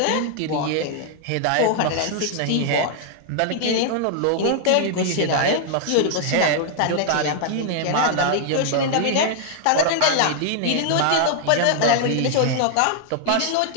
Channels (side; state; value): both; different; correlation -0.01